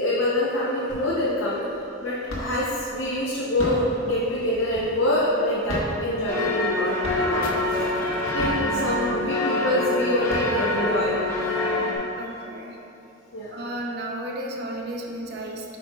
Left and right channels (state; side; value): normal; both; correlation 0.08